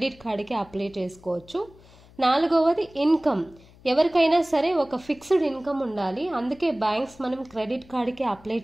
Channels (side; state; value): left; noise; hum, 25 dB below the sound